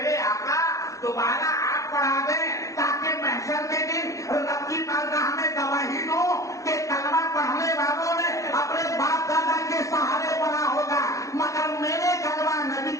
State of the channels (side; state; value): right; late; 0.16 ms